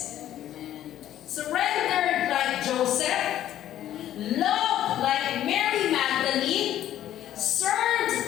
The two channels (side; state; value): right; quieter; 12.2 dB